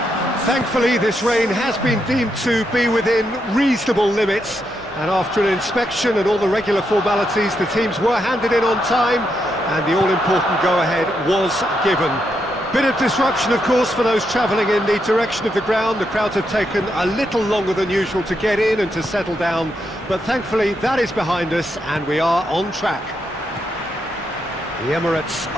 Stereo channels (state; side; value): normal; both; correlation 0.81